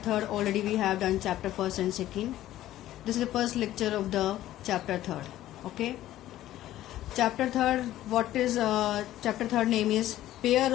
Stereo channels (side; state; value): right; quieter; 13.9 dB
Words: Already we have done chapter 1st and 2nd. This is the first lecture of the chapter 3rd. Okay. Chapter 3rd, what is chapter 3rd name is pair